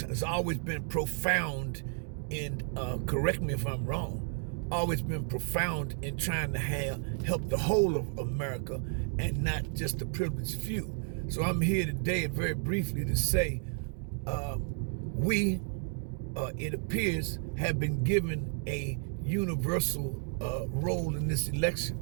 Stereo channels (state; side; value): silent; left; 56 dB below the other